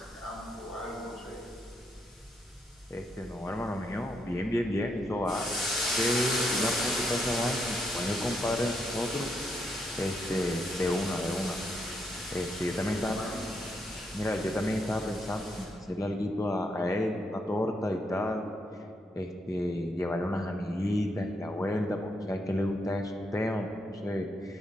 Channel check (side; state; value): both; normal; correlation 0.78